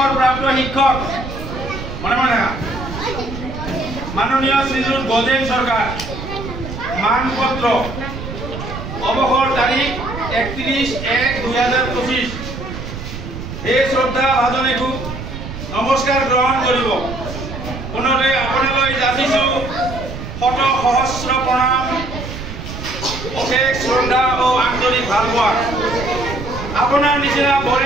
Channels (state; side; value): noise; right; rumble, 9 dB below the sound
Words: শিক্ষক মনে মনে মাননীয় শ্রীযুত গজেন সরকার মানপত্র অবসর তারিখ 31/1/2025 এই শ্রদ্ধা ভাজনে খুব নমস্কার গ্রহণ করব পুনরে আপোনালৈ যাচিছো শত সহস্র প্ৰণাম অশেষ শ্ৰদ্ধা ও আন্তৰিক ভালপোৱা আপনাৰ নিচিনা